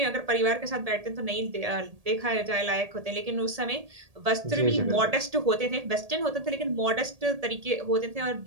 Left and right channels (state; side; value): late; left; 1.7 ms